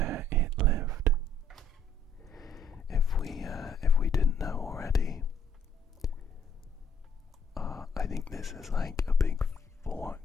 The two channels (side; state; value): both; normal; correlation 0.62